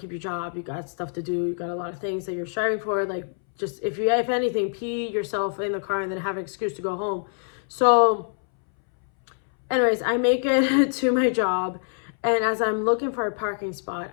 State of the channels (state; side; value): silent; right; 62 dB below the other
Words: your job. You got stuff to do. You got a lot of things that you're striving for. Like, just if anything, pee yourself in the car and then have an excuse to go home. So anyways, I make it to my job, and as I'm looking for a parking spot,